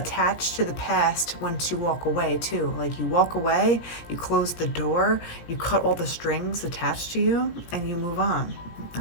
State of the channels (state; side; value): late; right; 17 ms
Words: to the past once you walk away too. Like, you walk away, you close the door, you cut all the strings attached to you, and you move on,